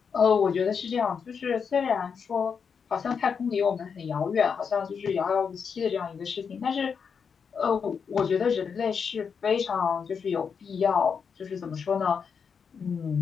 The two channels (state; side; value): quieter; right; 6.3 dB